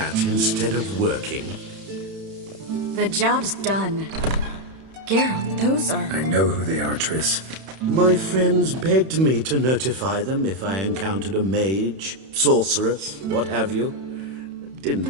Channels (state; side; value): late; left; 31 ms